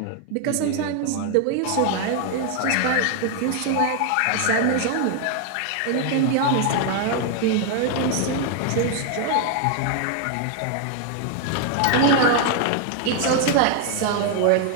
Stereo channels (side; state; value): both; different; correlation 0.00